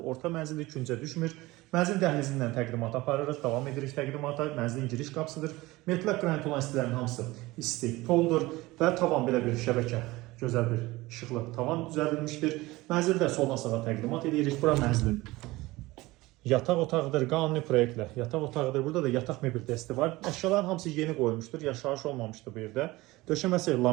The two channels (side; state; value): left; quieter; 19.9 dB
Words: Orta mənzildir, küncə düşmür. Mənzil dəhlizindən təqdimat aparırıq, davam edirik təqdimata. Mənzilin giriş qapısıdır. Metlaq qranit olan istəklərin hamısı isti poldur və tavan belə bir şəbəkə. Gözəl bir işıqlı tavan düzəldilmişdir. Mənzildə soldan sağa təqdimat edirik. Bura mənzilin yataq otağıdır, qanuni proyektlə yataq otağıdır. Burada da yataq mebel dəsti var. Əşyaların hamısı yeni qoyulmuşdur, yaşayış olmamışdır bu yerdə. Döşəməsi